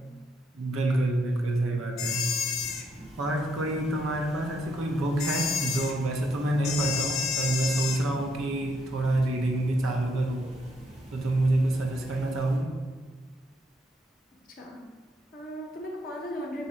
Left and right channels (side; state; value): both; normal; correlation 0.74